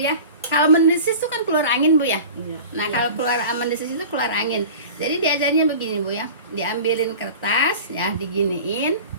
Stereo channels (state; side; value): inverted; both; correlation -0.38